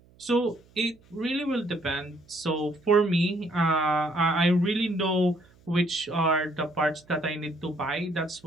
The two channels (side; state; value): right; noise; hum, 29 dB below the sound